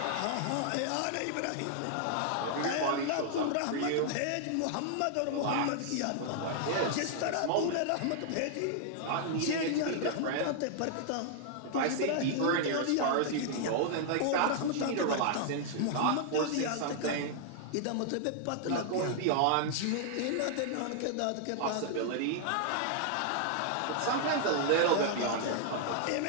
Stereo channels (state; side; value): different; both; correlation -0.01